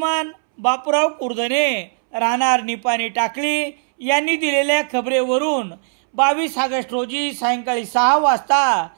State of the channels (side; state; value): left; silent; 65 dB below the other